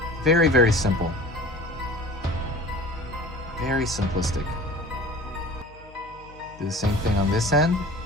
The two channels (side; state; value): left; noise; hum, 22 dB below the sound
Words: Very simple. Very simplistic. Do the same thing on this end.